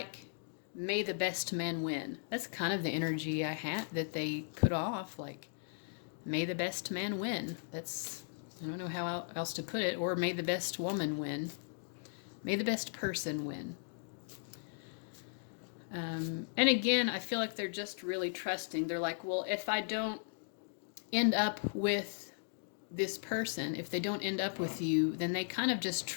may the best man win. That's kind of the energy I had that they put off, like, may the best man win. That's, I don't know how else to put it. Or may the best woman win. May the best person win. And again, I feel like they're just really trusting. They're like, well, if I don't end up with this person, if they don't end up with you, then they kind of just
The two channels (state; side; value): silent; right; digital silence